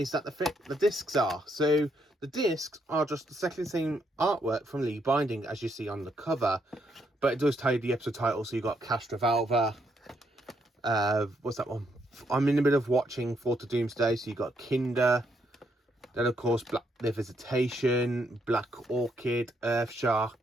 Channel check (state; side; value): normal; both; correlation 0.75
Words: that the discs are. So the discs are just exactly the same artwork from Lee Binding as you see on the cover, but it does tell you the episode title. So you got Castrovalva, what's that one? I'm in the middle of watching Fort of Doomsday, so you got Kinder, then of course The Visitation, Black Orchid, Earth